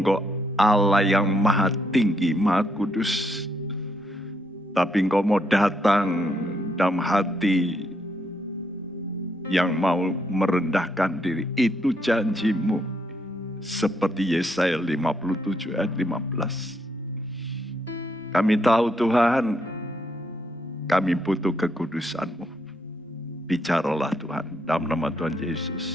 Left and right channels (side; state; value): both; normal; correlation 0.75